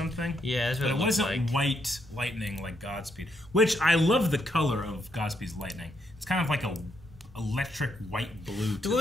Yeah, that's what but it wasn't white lightning like Godspeed, which I love the color of Godspeed's lightning. It's kind of like a electric white blue. Dude, what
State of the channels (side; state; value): both; normal; correlation 0.77